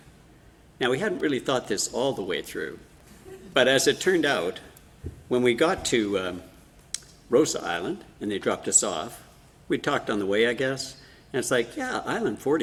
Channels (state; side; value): identical; both; correlation 1.00